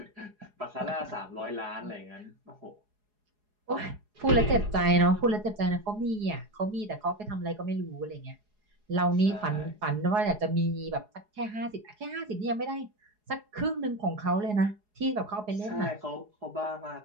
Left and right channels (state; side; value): late; left; 4.8 ms